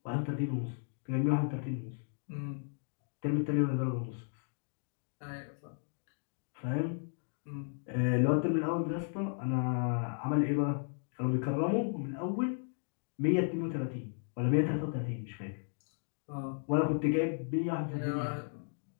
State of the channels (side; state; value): right; silent; 55 dB below the other